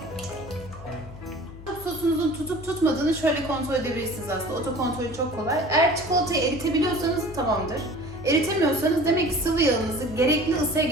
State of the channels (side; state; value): left; noise; hum, 15 dB below the sound